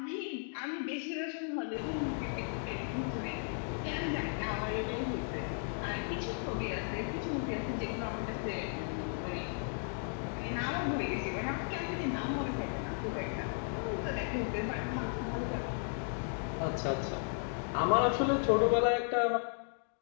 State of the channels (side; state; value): right; silent; 54 dB below the other